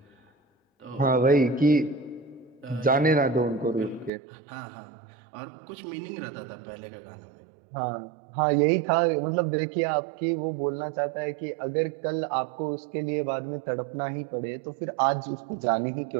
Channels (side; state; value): left; drops out; at 4.1 s